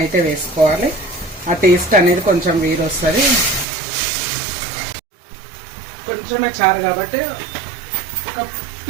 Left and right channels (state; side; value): drops out; left; at 3.7 s